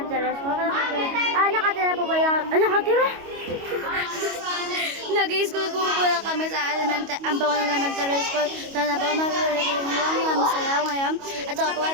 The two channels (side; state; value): left; late; 25 ms